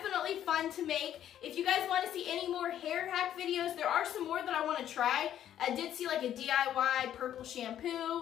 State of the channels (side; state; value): right; quieter; 10.9 dB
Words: fun to make. If you guys want to see any more hair hack videos, there are some more that I want to try. I did see like a DIY purple